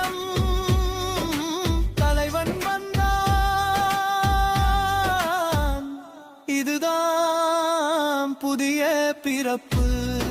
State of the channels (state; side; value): identical; both; correlation 1.00